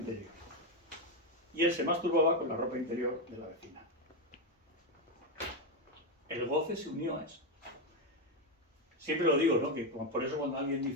Y él se masturbaba con la ropa interior de la vecina. El goce se unió a eso. Siempre lo digo, ¿no? Que por eso cuando alguien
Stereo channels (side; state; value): both; normal; correlation 0.06